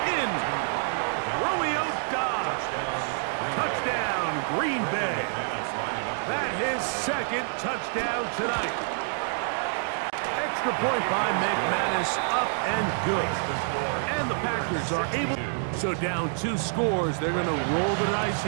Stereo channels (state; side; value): silent; left; 60 dB below the other